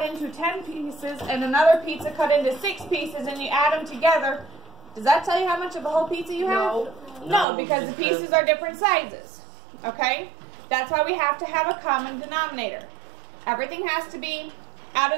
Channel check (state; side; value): drops out; left; at 7.5 s